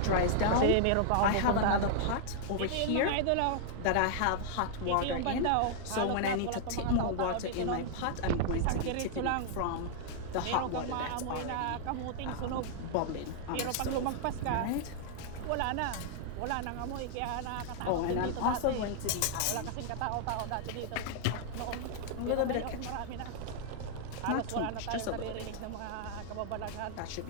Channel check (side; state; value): both; different; correlation -0.01